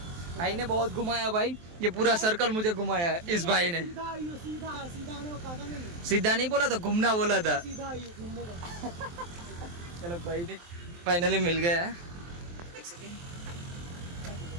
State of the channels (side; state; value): left; late; 23 ms